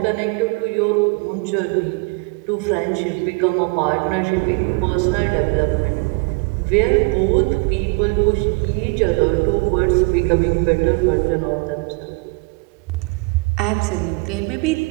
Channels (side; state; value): left; quieter; 31.0 dB